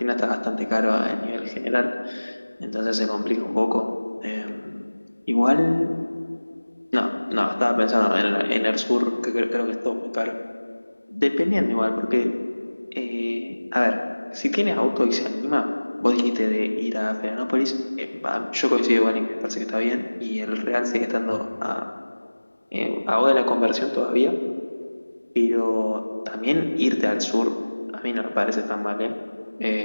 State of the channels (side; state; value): both; inverted; correlation -1.00